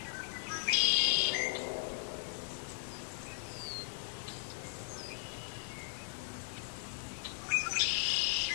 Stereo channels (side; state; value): right; silent; 53 dB below the other